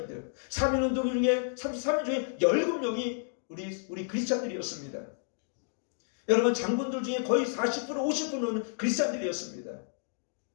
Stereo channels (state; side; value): silent; right; digital silence